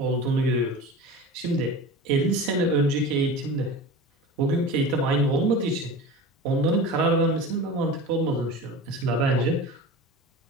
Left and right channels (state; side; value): normal; both; correlation 0.33